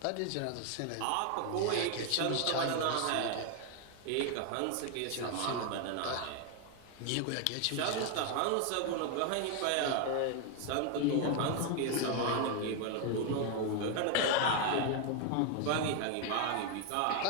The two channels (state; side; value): different; both; correlation 0.01